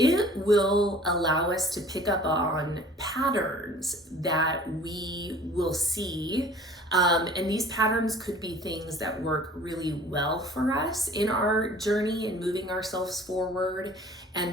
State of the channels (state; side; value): normal; both; correlation 0.49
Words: will allow us to pick up on patterns that we will see. And these patterns could be things that work really well for us in our journey and moving ourselves forward.